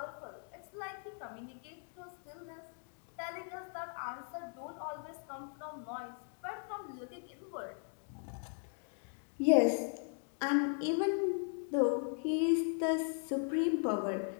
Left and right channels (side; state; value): right; silent; 52 dB below the other